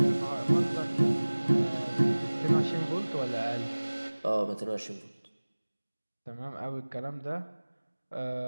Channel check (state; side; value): inverted; both; correlation -1.00